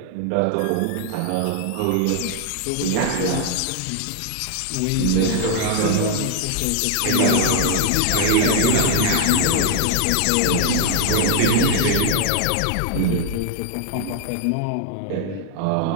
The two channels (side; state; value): both; different; correlation 0.00